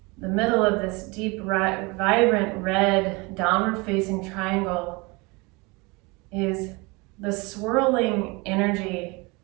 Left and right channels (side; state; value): left; quieter; 26.6 dB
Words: the middle of this deep, vibrant red downward facing triangle is the swirling energy